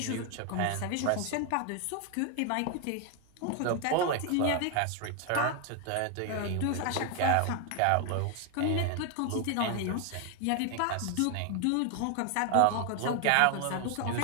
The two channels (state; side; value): different; both; correlation 0.01